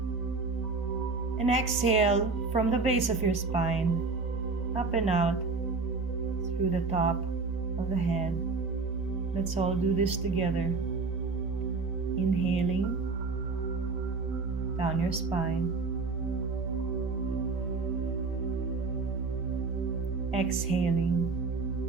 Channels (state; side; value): quieter; left; 4.2 dB